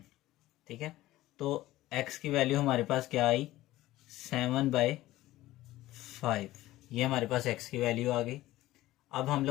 ठीक है, तो x की वैल्यू हमारे पास क्या आई 7/5। ये हमारे पास x की वैल्यू आ गई। अब हम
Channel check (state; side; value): quieter; right; 16.3 dB